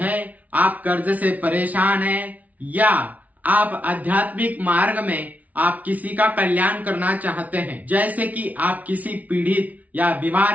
आप कर्ज से परेशान हैं या आप आध्यात्मिक मार्ग में आप किसी का कल्याण करना चाहते हैं, जैसे कि आप किसी पीड़ित या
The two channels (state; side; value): late; left; 0.072 ms